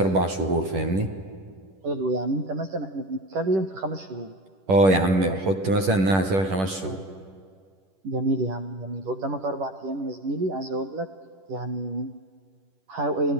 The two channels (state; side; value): late; left; 10 ms